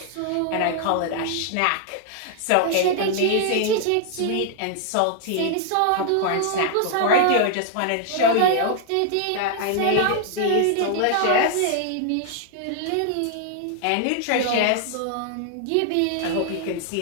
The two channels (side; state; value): both; different; correlation 0.00